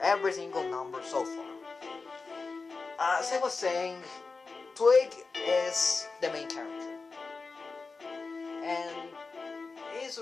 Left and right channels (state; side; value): quieter; right; 4.2 dB